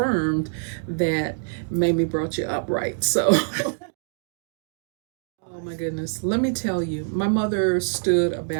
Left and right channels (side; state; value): left; silent; digital silence